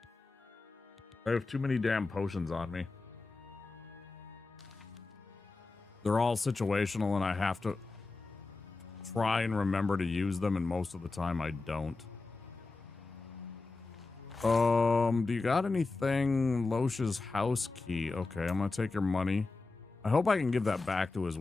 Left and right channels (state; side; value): quieter; right; 3.7 dB